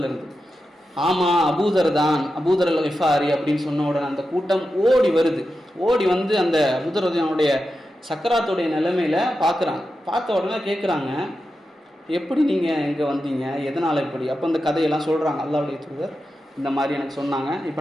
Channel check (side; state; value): both; normal; correlation 0.90